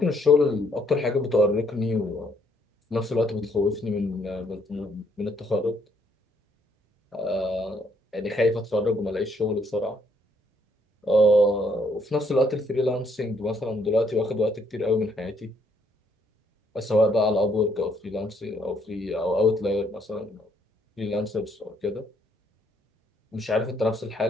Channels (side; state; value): both; normal; correlation 0.70